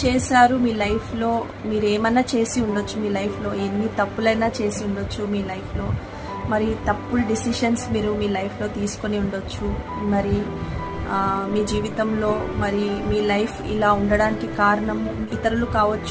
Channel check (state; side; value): identical; both; correlation 1.00